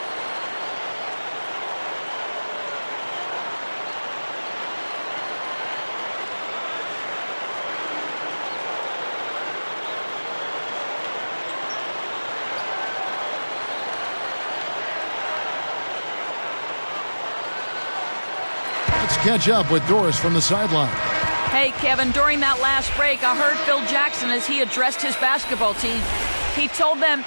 Let's catch up with Doris from the sideline. Hey, Kevin, during that last break, I heard Phil Jackson as he addressed his basketball team. He told them,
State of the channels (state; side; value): inverted; both; correlation -1.00